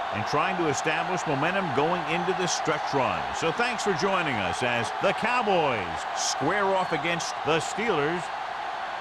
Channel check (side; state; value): both; identical; correlation 1.00